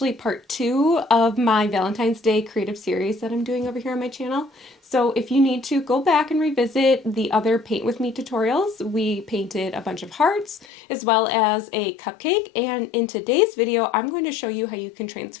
part 2 of my Valentine's Day creative series that I'm doing over here on my channel. So if you need to go back and revisit the other Paint With Me tutorials, we painted a bunch of hearts as well as a cupcake, and in today's video I'm going to show you how you can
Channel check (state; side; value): drops out; right; at 10.7 s